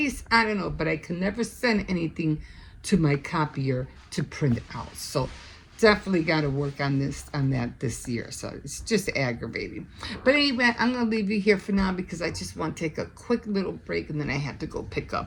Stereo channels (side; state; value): both; identical; correlation 1.00